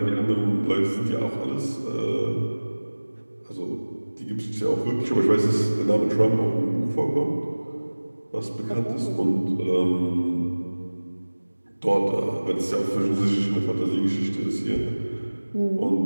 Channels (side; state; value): both; inverted; correlation -1.00